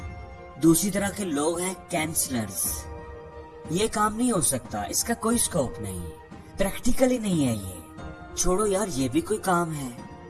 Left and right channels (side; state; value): both; identical; correlation 1.00